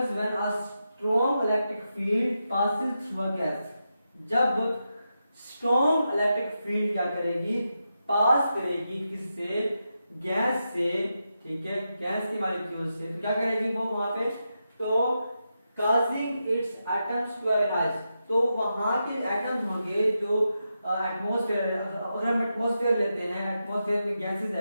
when a strong electric field passes through a gas. जब स्ट्रॉन्ग इलेक्ट्रिक फील्ड क्या करेगी, पास करेगी किससे, गैस से। ठीक है, गैस की मॉलिक्यूल से, तो क्या करेगी वो वहां पे, तो causing its atoms to ionise, तो वहां के एटम्स होंगे जो एटमॉस्फेयर, अगर हम एटमॉस्फेयर लेते हैं, एटमॉस्फेयर में गैसेस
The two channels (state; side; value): inverted; both; correlation -0.87